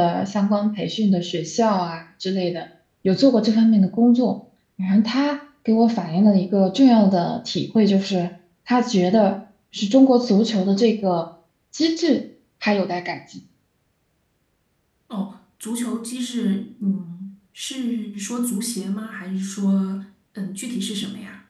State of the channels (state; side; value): identical; both; correlation 1.00